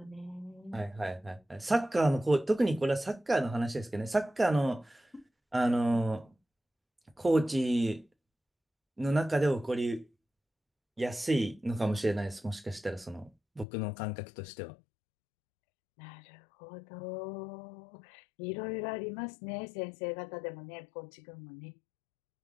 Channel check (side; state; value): right; drops out; at 13.7 s